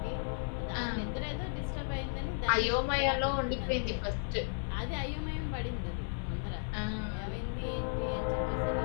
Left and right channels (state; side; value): silent; right; 55 dB below the other